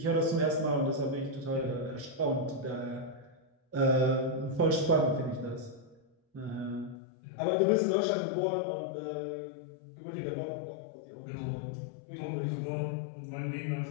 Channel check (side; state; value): right; drops out; at 7.0 s